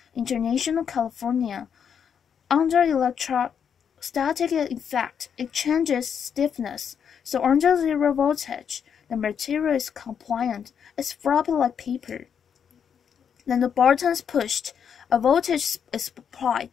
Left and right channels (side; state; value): right; quieter; 7.6 dB